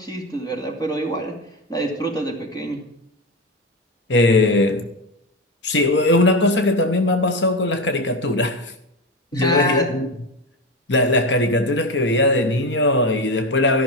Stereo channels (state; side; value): normal; both; correlation 0.17